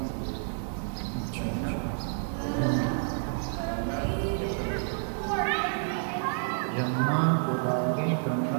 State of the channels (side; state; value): left; silent; digital silence